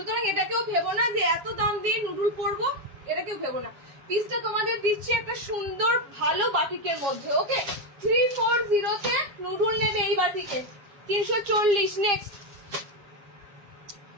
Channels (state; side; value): late; left; 7.3 ms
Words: এটাকেও ভেবো না যে এত দাম দিয়ে নুডুল পরবো, এটাকেও ভেবো না। পিসটা তোমাদের দিচ্ছি একটা সুন্দর ভালো বাটিকের মধ্যে। ওকে, 340-তে নুডুল নেবে এই বাটিকে 340। নেক্সট